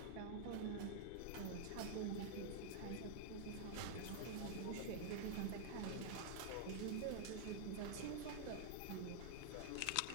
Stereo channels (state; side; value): different; both; correlation -0.01